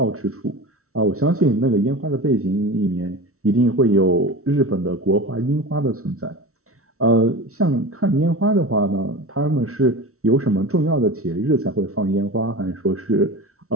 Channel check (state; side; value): late; left; 0.63 ms